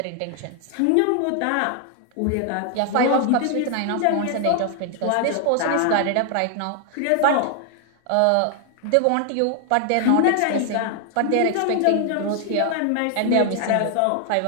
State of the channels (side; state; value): both; different; correlation 0.00